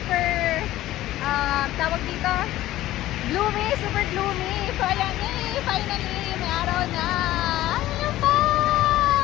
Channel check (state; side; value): quieter; right; 15.2 dB